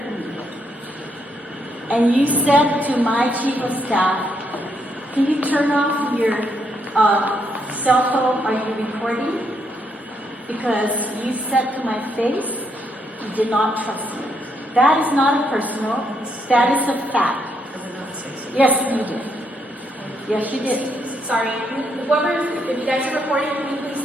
me. And you said to my chief of staff, can you turn off your cell phone? Are you recording? Because you said to my face, you did not trust me. That is not a personal, that is a fact. Yes, you did. Yes, you did. Sorry, whoever, if you guys are recording, can you please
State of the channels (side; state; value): both; normal; correlation 0.76